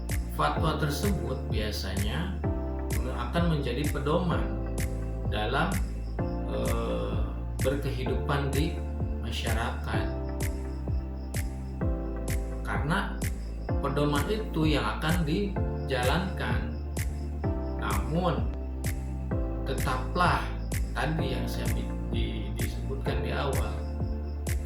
fatwa tersebut biasanya akan menjadi pedoman dalam berkehidupan di masyarakat, karena pedoman itu yang akan dijalankan. Namun tetaplah tadi yang saya disebutkan di awal,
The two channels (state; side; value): identical; both; correlation 1.00